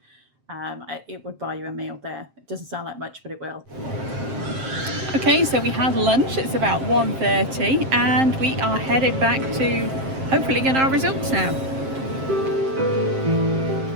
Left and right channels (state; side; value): late; left; 7.5 ms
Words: it would buy you a meal there. It doesn't sound like much, but it will. Okay, so we had lunch. It's about 1:30 and we are headed back to hopefully get our results now.